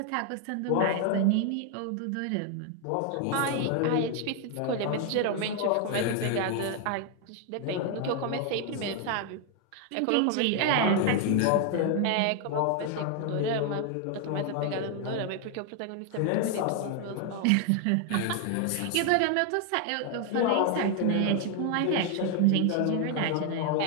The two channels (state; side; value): different; both; correlation 0.00